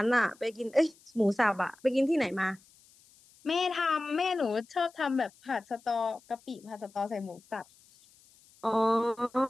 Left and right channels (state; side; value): noise; left; hiss, 28 dB below the sound